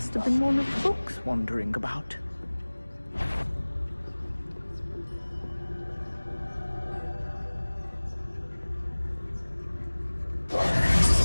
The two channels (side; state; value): both; inverted; correlation -1.00